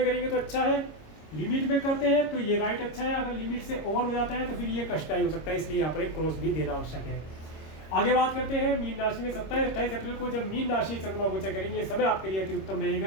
करेंगे तो अच्छा है, लिमिट में करते हैं तो ये राइट अच्छा है। अगर लिमिट से ओवर हो जाता है तो फिर ये कष्टदायी हो सकता है, इसलिए यहाँ पर एक क्रॉस भी देना आवश्यक है। आगे बात करते हैं मीन राशि में। 27-28 अप्रैल को जब मीन राशि चंद्रमा गोचर करेंगे समय आपके लिए अति उत्तम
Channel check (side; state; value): right; late; 26 ms